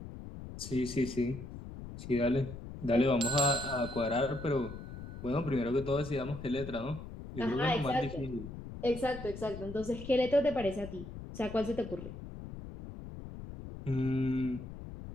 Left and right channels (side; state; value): left; noise; rumble, 11 dB below the sound